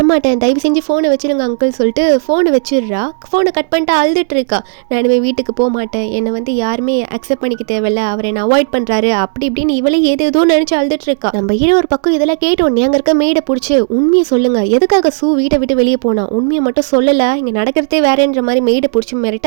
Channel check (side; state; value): left; silent; digital silence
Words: தயவு செஞ்சு ஃபோனை வச்சிருங்க அங்கிள் சொல்லிட்டு ஃபோனை வச்சிடுறா. ஃபோனை கட் பண்ணிட்டு அழுதுட்டு இருக்கா. நான் இனிமேல் வீட்டுக்கு போக மாட்டேன், என்னை வந்து யாருமே அக்செப்ட் பண்ணிக்க தேவையில்ல, அவர் என்னை அவாய்ட் பண்ணுறாரு அப்படி இப்படின்னு இவளே ஏதோ நினச்சி அழுதுட்டு இருக்கா. நம்ம ஹீரோ ஒரு பக்கம் இதெல்லாம் கேட்டோன்னே அங்கே இருக்க மேடை பிடிச்சி உண்மையை சொல்லுங்க, எதுக்காக சூ வீட்டை விட்டு வெளியே போனா, உண்மையை மட்டும் சொல்லலை, இங்கே நடக்கிறதே வேறன்ற மாதிரி மேடை பிடிச்சி